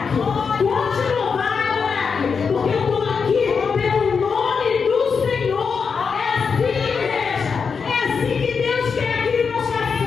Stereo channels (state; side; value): quieter; right; 5.7 dB